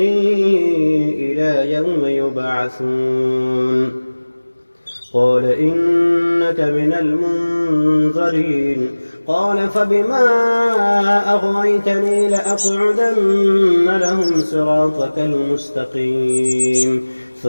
إلى يوم يبعثون. قال إنك من المنظرين. قال فبما أغويتني لأقعدن لهم صراطك المستقيم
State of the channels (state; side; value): inverted; both; correlation -1.00